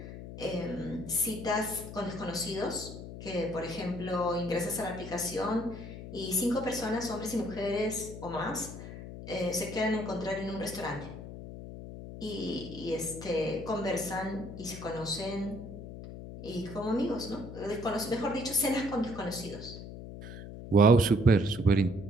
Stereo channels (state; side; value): noise; left; hum, 11 dB below the sound